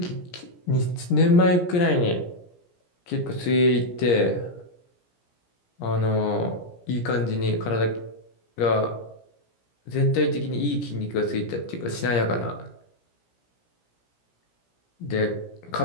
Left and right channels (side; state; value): right; late; 17 ms